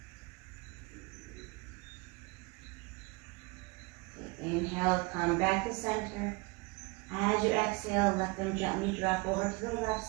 Inhale, come back to center. As you exhale, let them gently drop over to the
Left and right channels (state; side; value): quieter; left; 25.7 dB